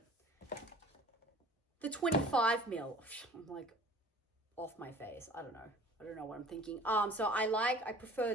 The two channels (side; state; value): both; normal; correlation 0.47